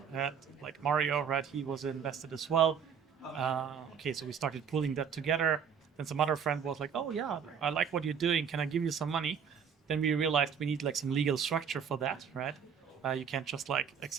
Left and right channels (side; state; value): left; quieter; 7.2 dB